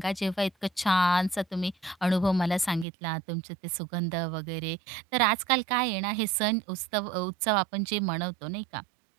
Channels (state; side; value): drops out; left; at 2.9 s